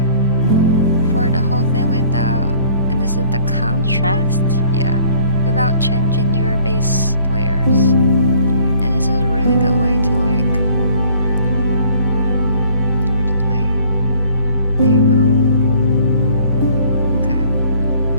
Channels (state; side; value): inverted; both; correlation -0.55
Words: for the whole thing without, and this is the contrast, yeah, without changing your base layers. And this is a really good way to like, where did my layer go? Okay.